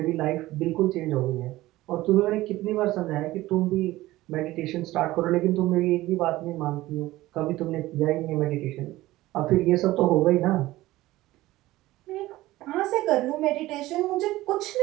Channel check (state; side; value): quieter; left; 17.2 dB